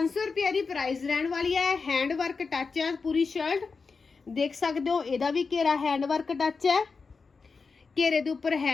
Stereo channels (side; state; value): right; quieter; 4.7 dB